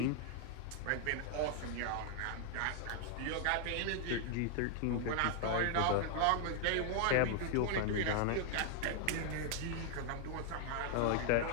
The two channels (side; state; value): both; different; correlation 0.00